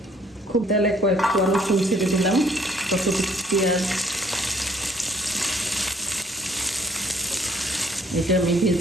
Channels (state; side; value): normal; both; correlation 0.62